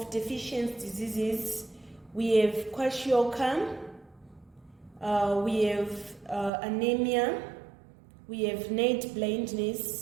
deficiency diseases, we have kwashiorkor, we have anemia, we have night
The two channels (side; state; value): left; drops out; at 6.5 s